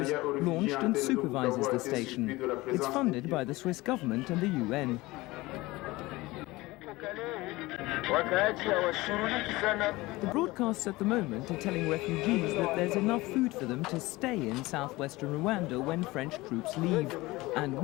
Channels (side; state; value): right; quieter; 20.4 dB